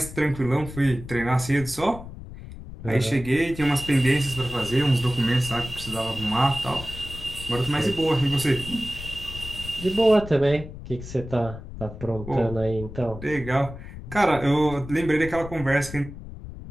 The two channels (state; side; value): noise; left; rumble, 12 dB below the sound